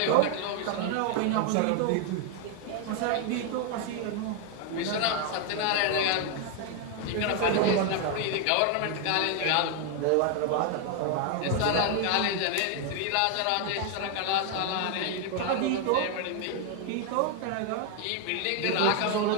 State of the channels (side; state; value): both; different; correlation 0.01